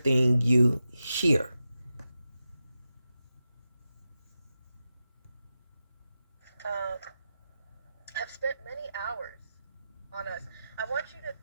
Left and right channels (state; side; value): inverted; both; correlation -0.91